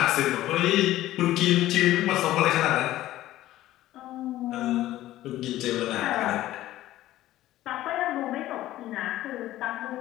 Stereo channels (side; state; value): right; quieter; 14.8 dB